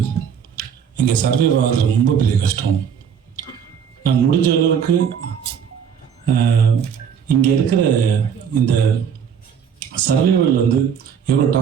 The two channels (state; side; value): quieter; left; 7.6 dB